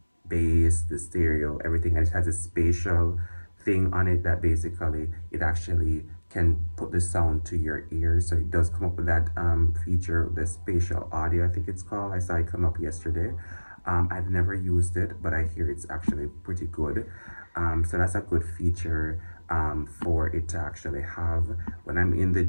bass, the stereo, everything, and it has a spatial thing on it that basically it actually can put the sound to your ears. So it does come up with that feature, the spatial audio, I think it's called. I saw it come up yesterday. I've never used it, but I hear it's actually pretty good. So that's a good feature for it to actually have. When I'm in the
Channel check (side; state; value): both; inverted; correlation -1.00